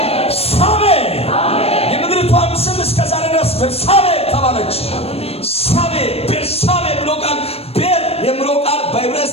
ሳቤ የምድሪቷም ስም እስከ ዛሬ ድረስ ቤርሳቤ ተባለች። ሳቤ ቤርሳቤ ብሎ ቃል ቤር የሚለው ቃል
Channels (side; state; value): right; late; 0.29 ms